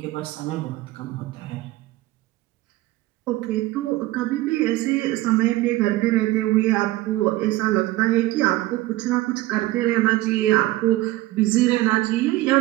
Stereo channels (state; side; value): quieter; left; 17.5 dB